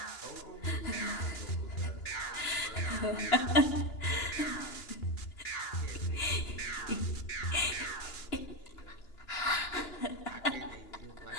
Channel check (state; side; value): late; right; 2.9 ms